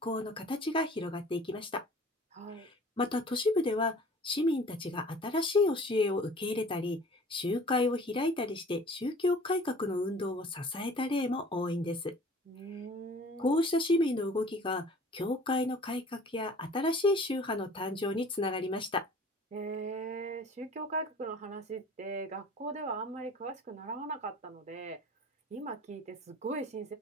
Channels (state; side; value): normal; both; correlation 0.48